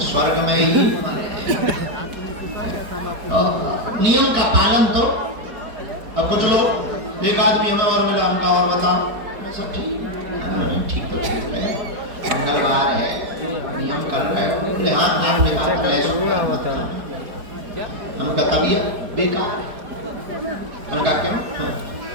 स्वर्ग में ही मरे। नियम का पालन तो। अब कुछ लोग, एक आदमी हमें और मिला, हमका और बताओ सब ठीक? ठीक तो ठीक है, मंगलवार है, नियम कर रहे हो। बोले हाँ, आपने कहा था लहसुन मत खाना। हमका तबीयत बेकार है। हमने कहा क्यों?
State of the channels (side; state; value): left; late; 4.6 ms